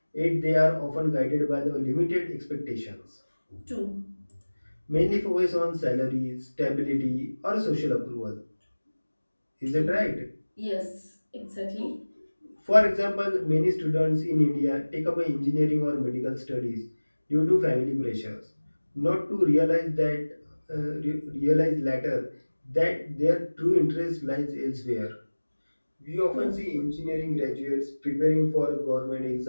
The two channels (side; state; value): both; inverted; correlation -1.00